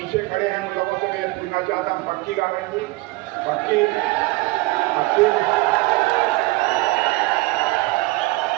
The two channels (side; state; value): left; quieter; 21.8 dB